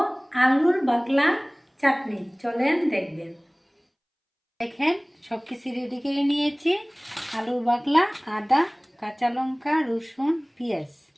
আলুর বাকলা চাটনি। চলেন দেখবেন। দেখেন সব কিছু রেডি করে নিয়েছি। আলুর বাকলা, আদা, কাঁচা লঙ্কা, রসুন, পেঁয়াজ।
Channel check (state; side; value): identical; both; correlation 1.00